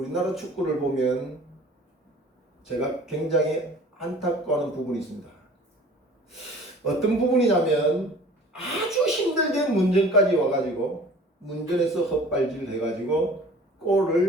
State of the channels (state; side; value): normal; both; correlation 0.46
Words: 축구를 보면 제가 굉장히 안타까워하는 부분이 있습니다. 어떤 부분이냐면 아주 힘들게 문전까지 와가지고 문전에서 헛발질 해가지고